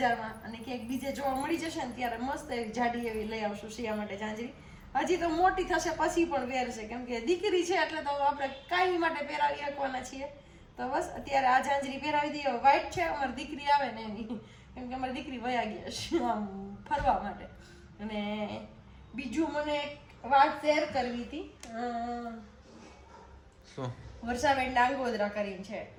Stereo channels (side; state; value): both; identical; correlation 1.00